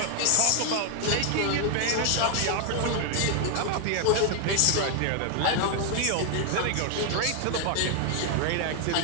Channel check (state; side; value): different; both; correlation 0.01